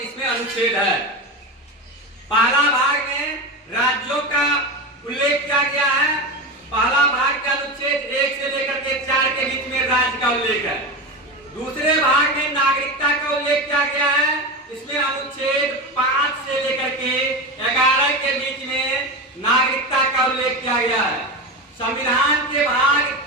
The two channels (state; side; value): normal; both; correlation 0.21